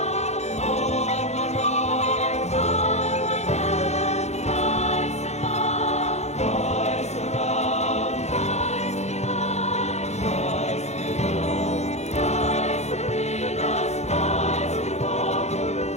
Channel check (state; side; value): late; right; 0.32 ms